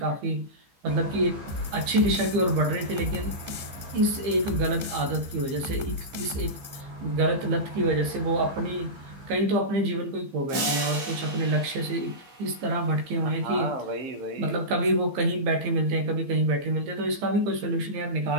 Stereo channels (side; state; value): left; late; 15 ms